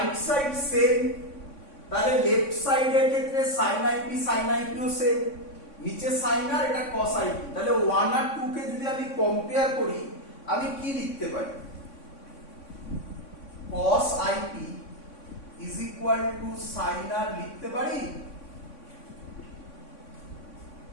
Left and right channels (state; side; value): late; right; 3.5 ms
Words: সাইড সেম, তাহলে লেফট সাইডের ক্ষেত্রে sin IP sin IP ও সেম, নিচে sin আর এটা cos IP। তাহলে 1 আর 2 কে যদি আমি কম্পেয়ার করি আমি কি লিখতে পারি? cos IP is equal to sin R লিখতে পারি?